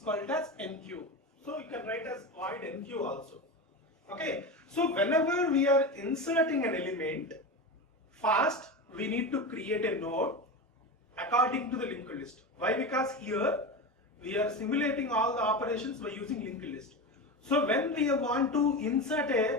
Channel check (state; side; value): normal; both; correlation 0.23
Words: as NQ. So you can write as void NQ also. Okay. So whenever we are inserting an element, first we need to create a node according to the linked list. Why? Because here we are simulating all the operations by using linked list. So when we want to insert